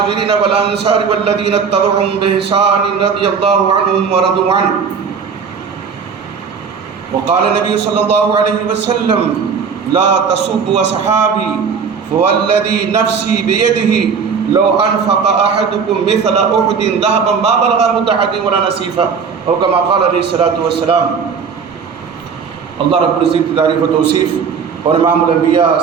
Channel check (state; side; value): quieter; left; 6.1 dB